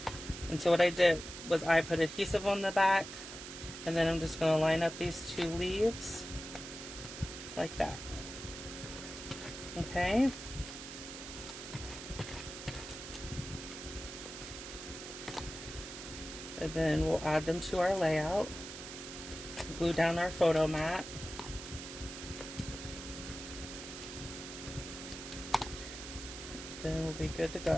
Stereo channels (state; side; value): noise; right; hiss, 10 dB below the sound